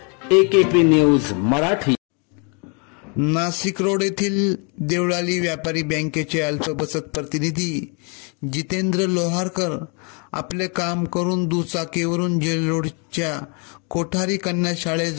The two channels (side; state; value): right; quieter; 35.1 dB